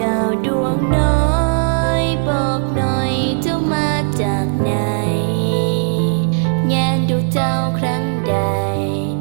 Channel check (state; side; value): silent; left; digital silence